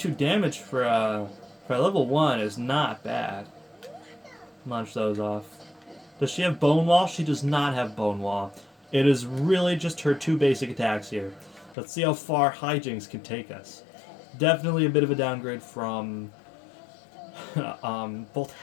damage for level 1 is not bad. Launch those off. Does she have Bone Wall? She does not have Bone Wall. It is really just her 2 basic attacks here. Let's see how far Hijinks can take us. Definitely a bit of a downgrade from both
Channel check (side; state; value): right; drops out; at 11.8 s